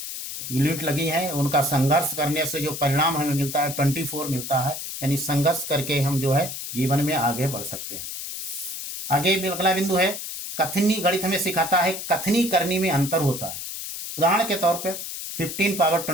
यूनिट लगी है, उनका संघर्ष करने से जो परिणाम हमें मिलता है 24 मिलता है। यानी संघर्ष करके हम जो है जीवन में आगे बढ़ सकते हैं। आगे अगला बिंदु है कथनी। गणित हमें सिखाता है कथनी करने में अंतर होता है। उदाहरण के तौर पर 15 पावर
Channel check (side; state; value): left; noise; hiss, 7 dB below the sound